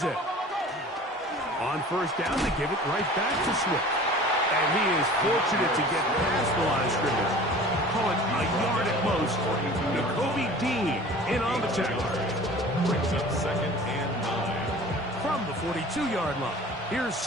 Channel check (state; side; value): normal; both; correlation 0.43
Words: On 1st down, they give it right back to Swift. And he is fortunate to get past the line of scrimmage. Call it a yard at most. Nakobe Dean in on the tackle. Brings up 2nd and 9. From the 42-yard line, here's